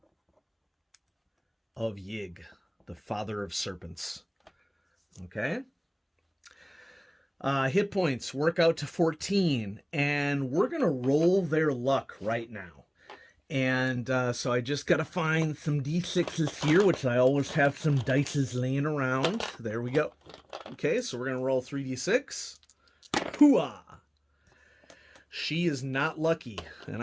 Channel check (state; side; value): identical; both; correlation 1.00